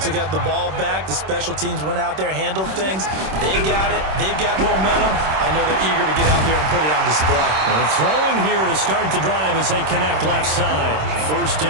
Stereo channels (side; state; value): left; late; 26 ms